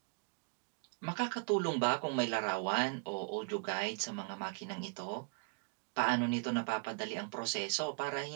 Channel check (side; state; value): left; quieter; 36.3 dB